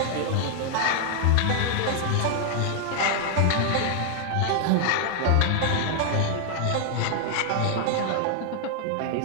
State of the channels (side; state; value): both; different; correlation 0.00